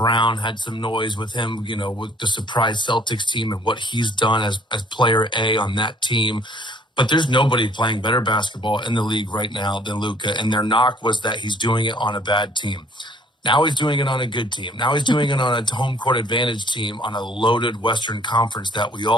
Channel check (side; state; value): both; normal; correlation 0.59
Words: had some noise with him, with the surprise Celtics team and what he's done as player A on that team. But there's nobody playing better basketball in the league right now than Luka. And their knock was that he's doing it on a bad team. Now he's doing it on a good team. Now he's doing it on a home court advantage team on a loaded Western Conference that we